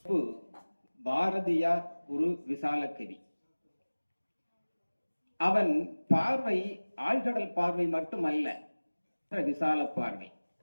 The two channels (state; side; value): inverted; both; correlation -1.00